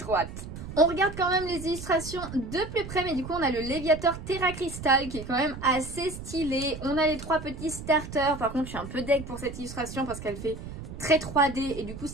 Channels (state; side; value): noise; right; rumble, 10 dB below the sound